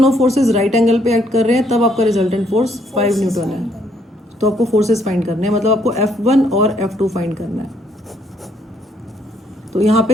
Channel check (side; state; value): both; normal; correlation 0.69